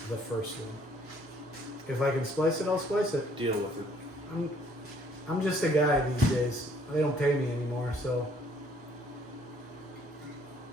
the first one. If I can splice it, I'll splice it. Deal with it. I'm just a guy these days. They don't pay me anymore, so.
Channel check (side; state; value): both; normal; correlation 0.62